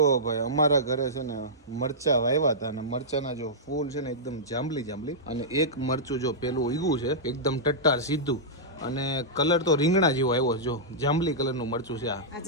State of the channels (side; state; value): both; normal; correlation -0.13